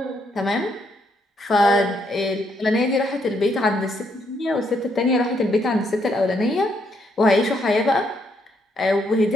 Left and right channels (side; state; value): both; normal; correlation 0.74